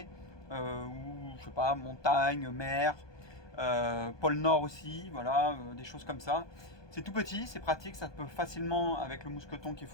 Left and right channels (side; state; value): right; late; 1.2 ms